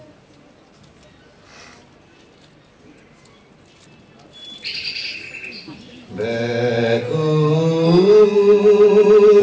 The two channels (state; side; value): identical; both; correlation 1.00